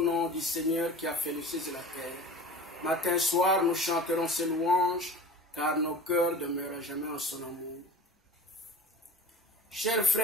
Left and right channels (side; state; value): both; normal; correlation 0.38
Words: du Seigneur qui a fait les cieux et la terre. Matin et soir, nous chanterons ses louanges, car nos cœurs demeurent jamais en son amour. Chers